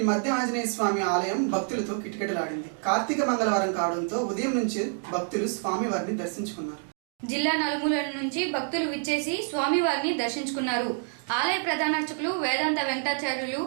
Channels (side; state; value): left; silent; 56 dB below the other